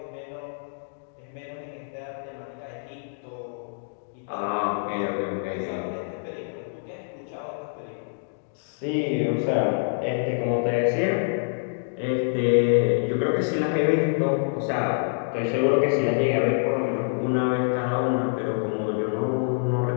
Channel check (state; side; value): silent; right; digital silence